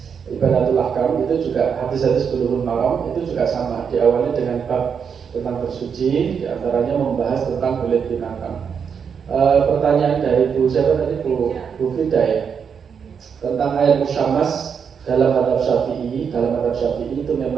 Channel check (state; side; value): quieter; left; 6.8 dB